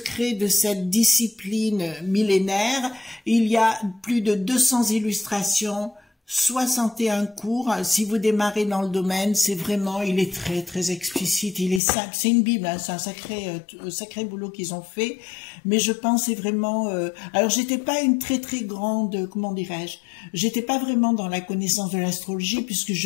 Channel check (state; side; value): drops out; right; at 11.8 s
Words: de cette discipline millénaire. Il y a plus de 200 illustrations, 61 cours. Si vous démarrez dans le domaine, c'est vraiment, il est très très explicite, il est simple, c'est une Bible, hein, c'est un sacré boulot qu'ils ont fait, mais je pense c'est vraiment, alors j'étais pas une très très grande, comment dirais-je, j'étais pas vraiment dans la connaissance de l'astrologie puisque